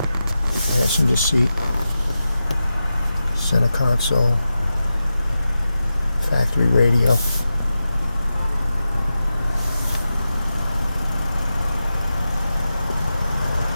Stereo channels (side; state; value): both; inverted; correlation -0.91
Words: passenger seat, center console, factory radio,